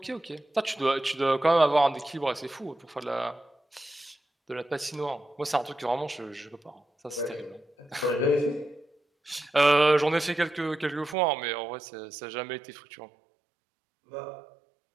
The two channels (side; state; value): left; drops out; at 11.2 s